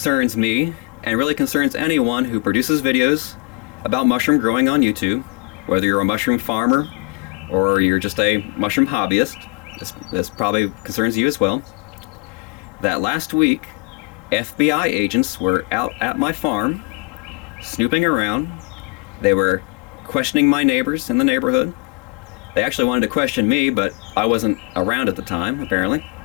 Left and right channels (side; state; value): right; quieter; 30.9 dB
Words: me and really concerns anyone who produces videos about mushroom growing on YouTube, whether you're a mushroom farmer or you're just a mushroom hobbyist. This probably concerns you as well. That last week, FBI agents were out at my farm, snooping around. They were questioning my neighbors in the neighborhood. They actually wanted to question me, but I wasn't around at the time, apparently.